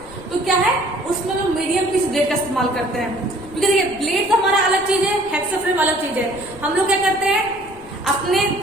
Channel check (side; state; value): left; noise; rumble, 21 dB below the sound